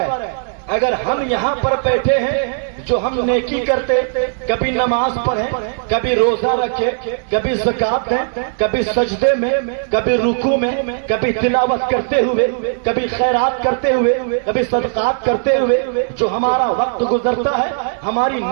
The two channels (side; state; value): left; silent; digital silence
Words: اگر ہم یہاں پر بیٹھے ہیں جو ہم نیکی کرتے، کبھی نماز پڑھیں، کبھی روزہ رکھے، کبھی زکات دیں، کبھی سجدے میں، کبھی رکوع میں، کبھی تلاوت کرتے ہوئے، کبھی خیرات کرتے ہوئے، کبھی صدقات کرتے ہوئے جو ہمارا وقت گزرتا ہے، ہماری